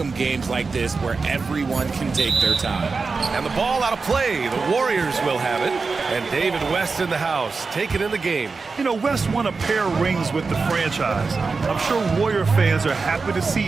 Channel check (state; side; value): quieter; left; 4.4 dB